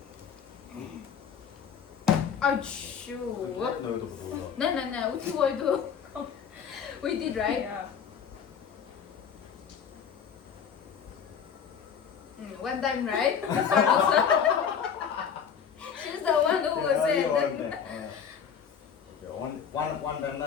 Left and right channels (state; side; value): quieter; right; 7.4 dB